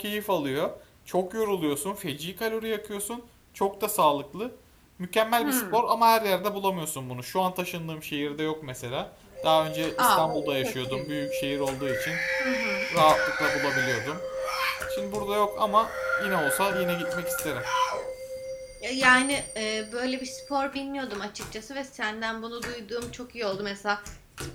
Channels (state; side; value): identical; both; correlation 1.00